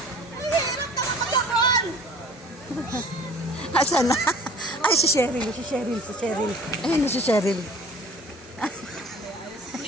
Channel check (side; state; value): both; normal; correlation 0.47